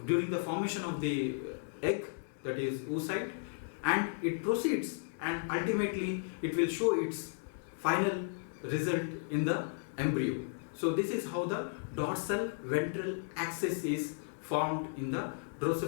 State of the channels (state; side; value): silent; right; digital silence